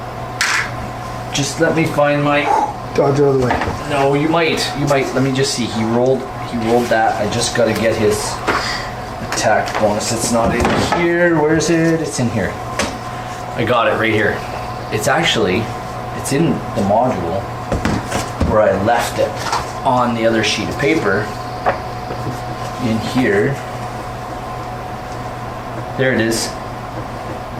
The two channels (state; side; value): identical; both; correlation 1.00